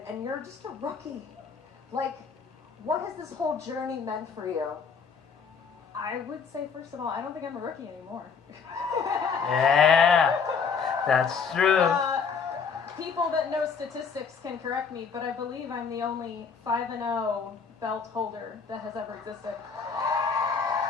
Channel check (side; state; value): right; quieter; 5.8 dB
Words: and you're just a rookie. Like, what has this whole journey meant for you? I would say, first of all, I don't think I'm a rookie anymore. Yeah, that's true. People that know statistics can correct me, but I believe I'm the only 5-0 belt holder that has ever existed.